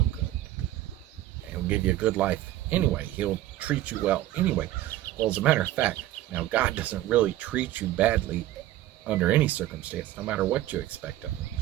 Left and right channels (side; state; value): left; quieter; 14.4 dB